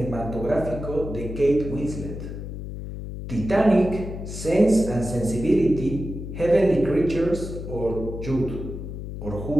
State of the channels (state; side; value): noise; left; hum, 8 dB below the sound